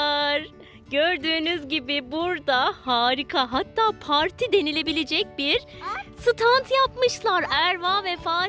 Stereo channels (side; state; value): both; identical; correlation 1.00